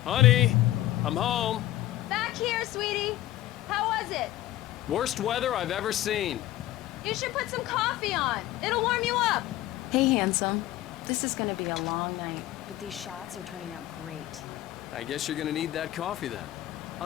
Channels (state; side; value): quieter; right; 15.1 dB